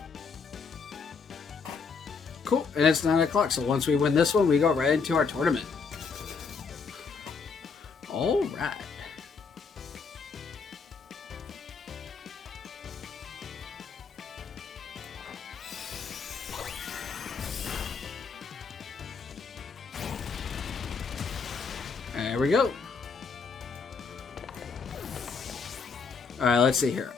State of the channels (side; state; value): right; quieter; 5.2 dB